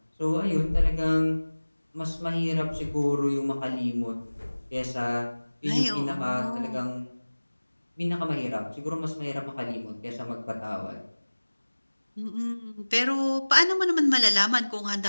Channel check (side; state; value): both; inverted; correlation -1.00